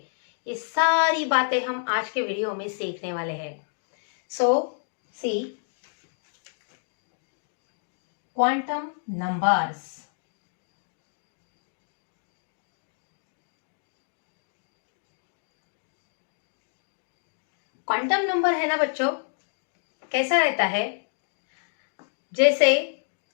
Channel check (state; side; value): silent; right; digital silence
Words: ये सारी बातें हम आज के वीडियो में सीखने वाले हैं. सो सी क्वांटम नंबर्स. क्वांटम नंबर है ना बच्चों, कैसा रहता है? जैसे